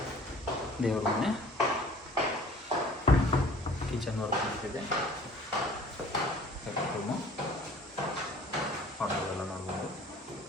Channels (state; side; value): normal; both; correlation 0.50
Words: ದೇವ್ರ ಮನೆ, ಕಿಚನ್ ವರ್ಕ್ ನಡೀತಿದೆ. ರೂಮು ಎಲ್ಲ ನೋಡ್ಬೋದು.